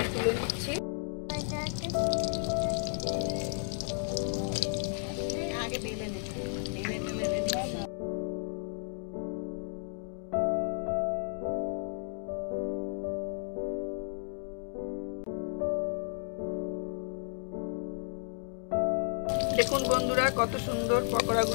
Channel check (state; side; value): silent; right; 56 dB below the other